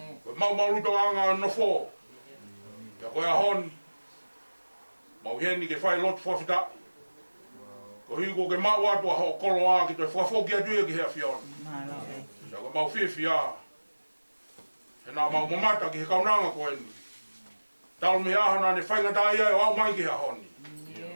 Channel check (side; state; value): both; inverted; correlation -1.00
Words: Koe mau anga no fo. Ia koe a honi. Mau heni ke whai lotu whawhita. Ko higo ke mau atua ho kolo a ki toi whawhoki atu e ki hea whion. Ia koe mau whiwhia. He nā mau mamata ki he kaunanga koe ni. Tau me ahana ne whaingata ia e au mai ki hea honi.